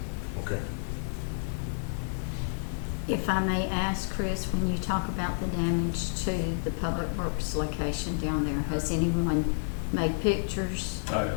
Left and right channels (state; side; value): silent; right; digital silence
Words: okay. If I may ask, Chris, when you talk about the damage to the Public Works location down there, has anyone made pictures? I